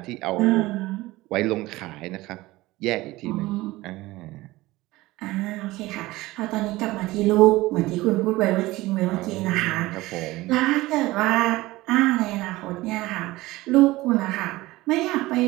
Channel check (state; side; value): quieter; left; 19.0 dB